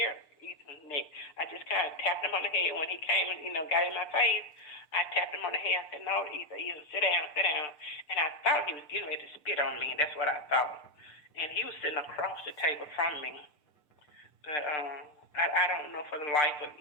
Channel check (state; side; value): late; right; 6.7 ms